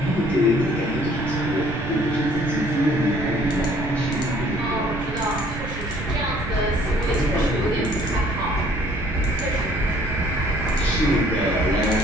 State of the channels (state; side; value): noise; right; rumble, 9 dB below the sound